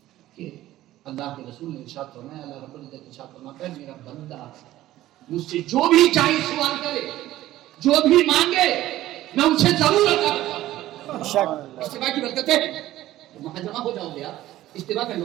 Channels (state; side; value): quieter; left; 14.8 dB